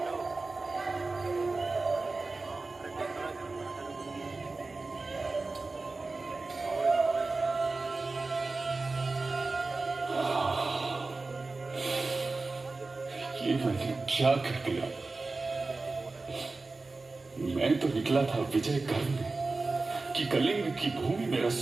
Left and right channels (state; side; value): quieter; left; 3.6 dB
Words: ये मैंने क्या कर दिया? मैं तो निकला था विजय करने कि कलिंग की भूमि मेरा